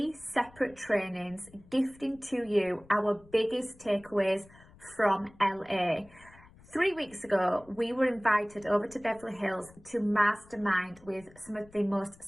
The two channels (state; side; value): noise; left; rumble, 24 dB below the sound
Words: separate trainings gifting to you our biggest takeaways from LA. 3 weeks ago, we were invited over to Beverly Hills to mastermind with some of the most